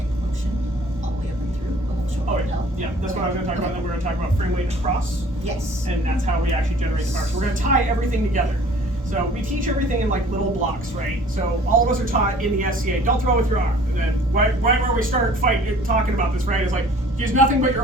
motion all the way up and through. Oh, yeah. Yeah, that's what I was going to talk about. Then we're going to talk about frame weight across. Yes. And that's how we actually generate the power. So we're going to tie everything together. So we teach everything in like little blocks, right? So all of us are taught in the SCA, don't throw with your arm. And then right where we start talking about this, right, is like, use nothing but your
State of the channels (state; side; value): normal; both; correlation 0.51